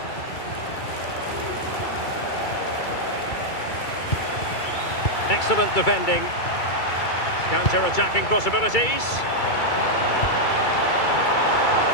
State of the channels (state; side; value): late; right; 2.3 ms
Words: Excellent defending. Counter-attacking possibilities.